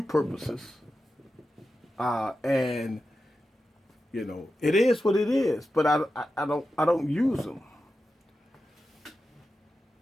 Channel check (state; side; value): normal; both; correlation 0.91